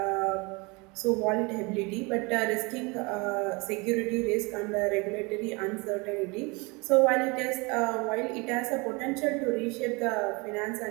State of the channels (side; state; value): left; quieter; 27.6 dB